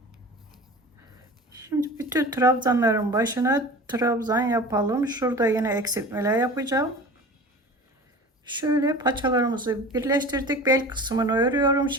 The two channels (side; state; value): both; normal; correlation 0.37